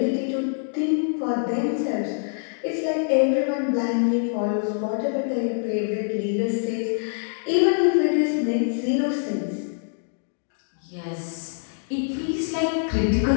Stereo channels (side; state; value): right; silent; digital silence